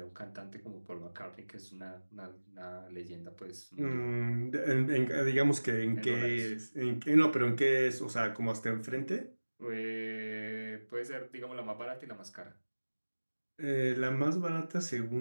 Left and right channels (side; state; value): both; inverted; correlation -1.00